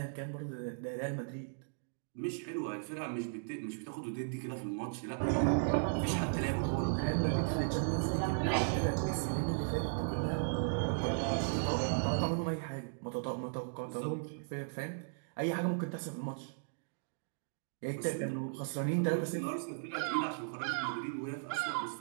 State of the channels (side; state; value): left; silent; digital silence